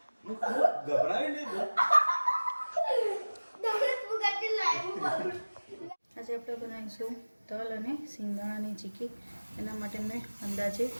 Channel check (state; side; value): inverted; both; correlation -1.00